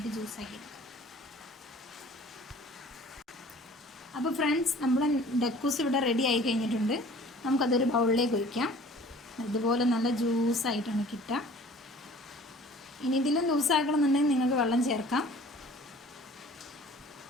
ജ്യൂസാക്കി എടുക്കാം. അപ്പോൾ ഫ്രണ്ട്സ്, നമ്മുടെ ഡക്കൂസ് ഇവിടെ റെഡി ആയി കഴിഞ്ഞിട്ടുണ്ട്. നമുക്കതൊരു ബൗളിലേക്ക് ഒഴിക്കാം. ഇതുപോലെ നല്ല ജ്യൂസായിട്ടാണ് കിട്ടുക. ഇനി ഇതിലും ലൂസാക്കണമെന്നുണ്ടെങ്കിൽ നിങ്ങൾക്ക് വെള്ളം ചേർക്കാം.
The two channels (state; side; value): normal; both; correlation 0.49